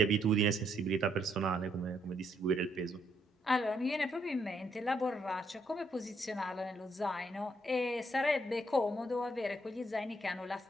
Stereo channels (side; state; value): both; normal; correlation 0.73